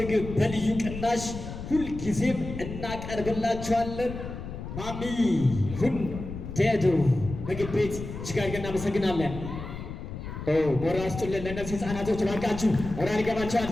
በልዩ ቅናሽ ሁልጊዜም እናቀርብላችኋለን። ማሚ ሁንዴዶ ምግብ ቤት እጅግ አድርገን እናመሰግናለን። ሞራል ስጡልን ለእነዚህ ህፃናቶች እባካችሁ። ሞራል ይገባቸዋል።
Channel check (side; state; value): left; noise; rumble, 9 dB below the sound